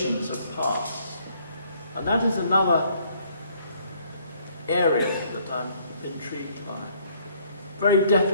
of parts, and that is another area that I'm intrigued by. Very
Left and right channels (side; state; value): both; inverted; correlation -0.64